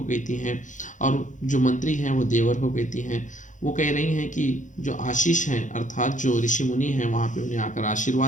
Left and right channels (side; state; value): right; late; 0.36 ms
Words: कहती हैं, और जो मंत्री हैं वो देवर को कहती हैं। वो कह रही हैं कि जो आशीष हैं अर्थात जो ऋषि मुनि हैं वहाँ पे उन्हें आकर